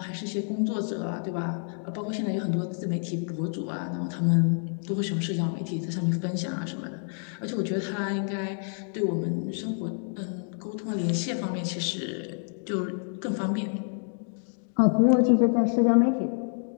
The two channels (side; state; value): right; silent; 57 dB below the other